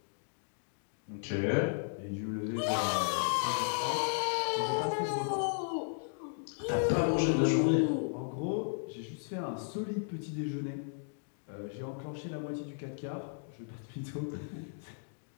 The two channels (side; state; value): right; silent; digital silence